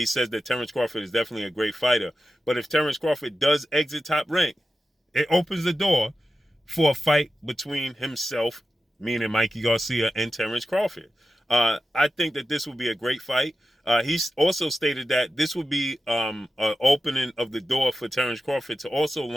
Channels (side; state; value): both; normal; correlation 0.92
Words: says that Terence Crawford is definitely a great fighter. But if Terence Crawford does exit Top Rank, it opens the door for a fight between himself, meaning Mikey Garcia, and Terence Crawford. I think that this would be a great fight. He's also stated that this would be an opening of the door for Terence Crawford to also